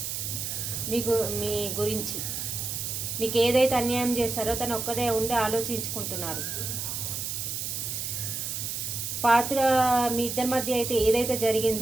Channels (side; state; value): right; noise; hiss, 4 dB below the sound